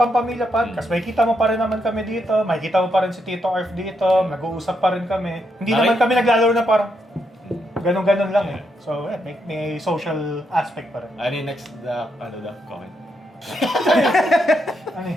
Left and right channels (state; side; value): normal; both; correlation 0.80